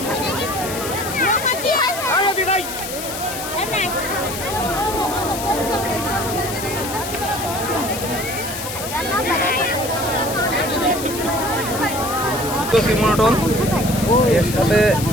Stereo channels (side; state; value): left; noise; hiss, 7 dB below the sound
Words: মনোটন এর সাথে